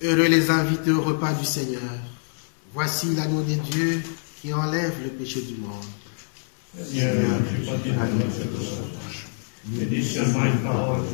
Heureux les invités au repas du Seigneur. Voici l'agneau de Dieu qui enlève le péché du monde. Seigneur, je ne suis pas digne de cette sauce, mais dis seulement une parole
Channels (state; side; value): silent; right; 62 dB below the other